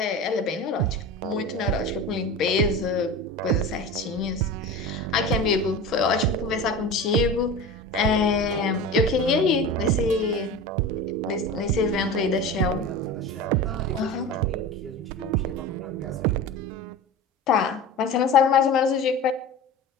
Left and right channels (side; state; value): both; normal; correlation 0.31